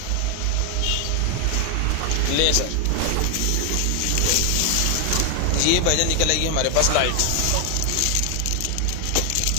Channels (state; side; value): different; both; correlation 0.00